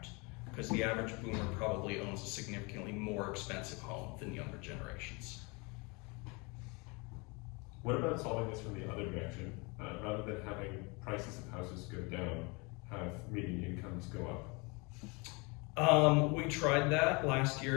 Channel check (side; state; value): right; quieter; 28.9 dB